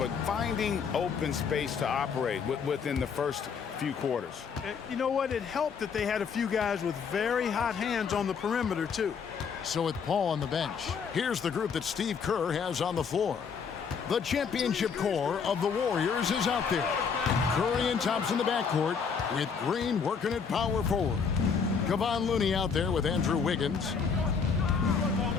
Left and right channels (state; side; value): quieter; right; 6.1 dB